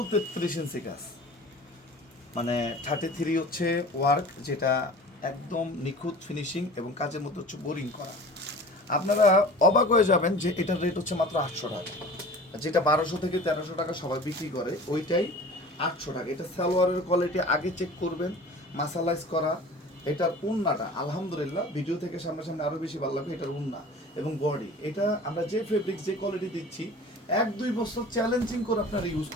33 ইঞ্চি কাজ, মানে 33 হচ্ছে ওয়ার্ক, যেটা একদম নিখুঁত ফিনিশিং এবং কাজের মধ্যে হচ্ছে বোরিং করা। আপনারা অবাক হয়ে যাবেন যে এটার রেট হচ্ছে মাত্র 800 টাকা। যেটা 1200 থেকে 1300 টাকা সবাই বিক্রি করে, ওইটাই 800 টাকা। এটা সালোয়ারের কোয়ালিটি আগে চেক করবেন, মাসালাইজ করা। এটার উন্নাটা আলহামদুলিল্লাহ ভিডিও থেকে সামনাসামনি আরও বেশি ভালো লাগবে। এটার উন্না এবং বডি, এটা আমরা যে ফেব্রিক যে কোয়ালিটি দিচ্ছি 1-2 বছর চ্যালেঞ্জিং করে আপনারা ইউজ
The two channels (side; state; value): both; normal; correlation 0.42